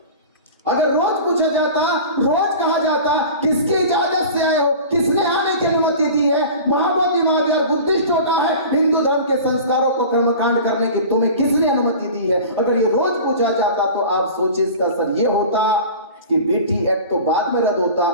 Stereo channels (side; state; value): both; inverted; correlation -0.37